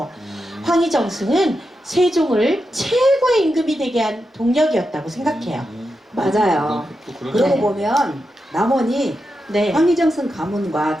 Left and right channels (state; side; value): normal; both; correlation 0.88